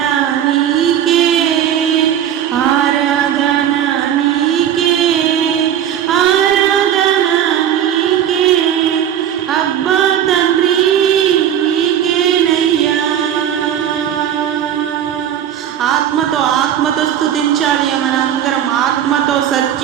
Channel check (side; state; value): left; quieter; 10.1 dB